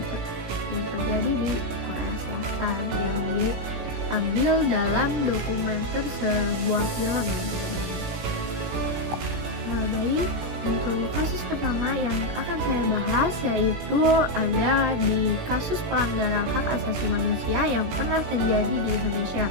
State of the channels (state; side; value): late; left; 17 ms